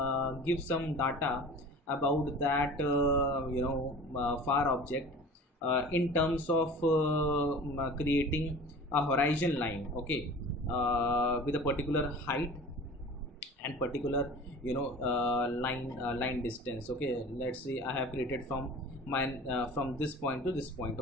give some data about that far object in terms of creating a horizon line, okay, with a particular height and particular line distance. Okay, let's say I have created from my from this point to this point.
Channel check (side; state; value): both; normal; correlation 0.40